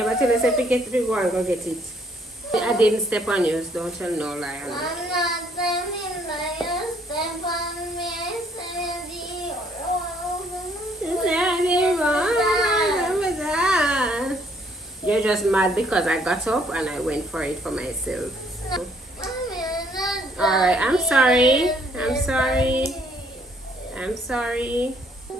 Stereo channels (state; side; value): normal; both; correlation 0.65